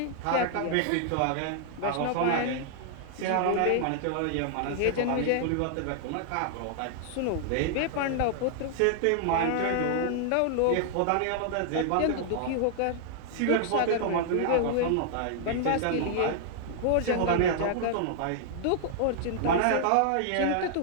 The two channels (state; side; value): different; both; correlation -0.01